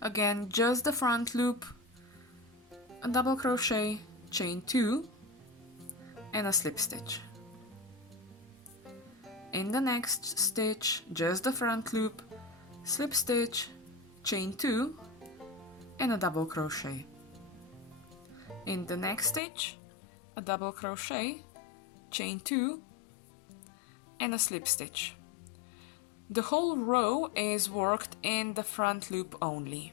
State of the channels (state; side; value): drops out; right; at 19.4 s